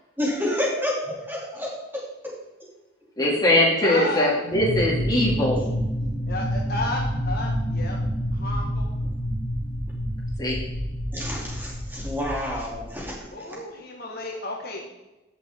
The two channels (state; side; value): normal; both; correlation 0.45